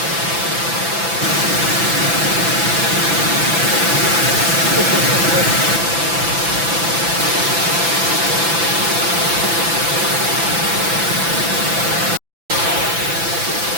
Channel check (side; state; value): left; late; 5.9 ms